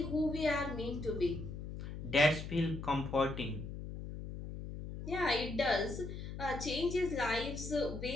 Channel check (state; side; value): noise; left; hum, 8 dB below the sound